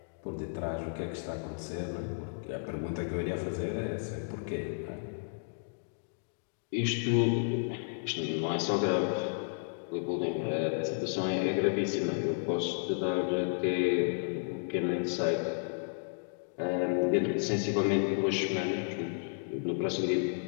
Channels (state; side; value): silent; right; digital silence